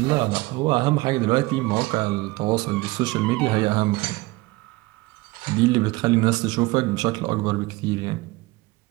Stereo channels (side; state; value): left; quieter; 21.4 dB